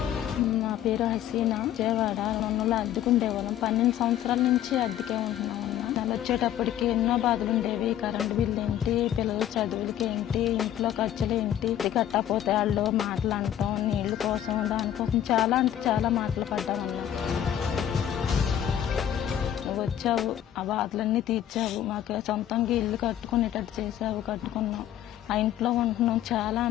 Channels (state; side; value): quieter; right; 11.1 dB